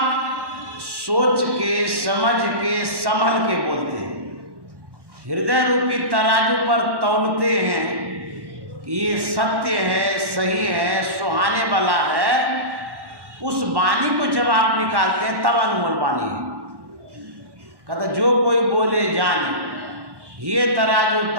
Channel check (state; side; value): late; left; 1.1 ms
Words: सोच के, समझ के, संभल के बोलते हैं, हृदय रूपी तराजू पर तौलते हैं कि ये सत्य है, सही है, सुहाने वाला है, उस वाणी को जब आप निकालते हैं तब अनमोल वाणी है। कहता जो कोई बोले जाने, ये तराजू